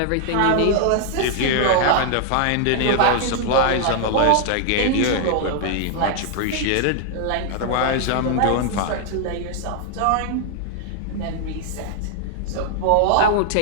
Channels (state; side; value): different; both; correlation 0.00